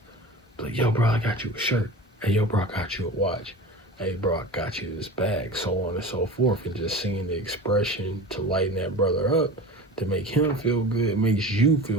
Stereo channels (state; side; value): normal; both; correlation 0.34